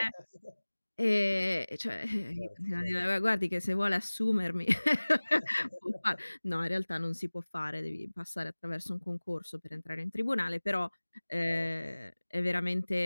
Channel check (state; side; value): inverted; both; correlation -1.00